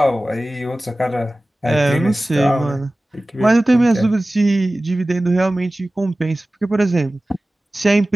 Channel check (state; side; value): normal; both; correlation 0.97